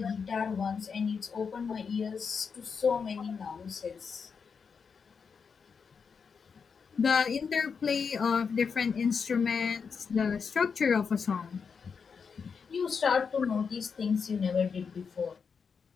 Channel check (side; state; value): right; quieter; 5.9 dB